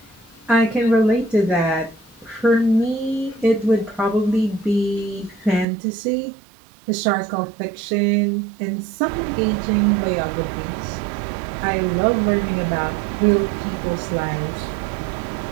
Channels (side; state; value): left; drops out; at 5.7 s